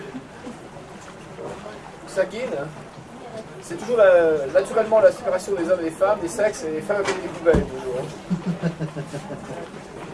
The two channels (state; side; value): identical; both; correlation 1.00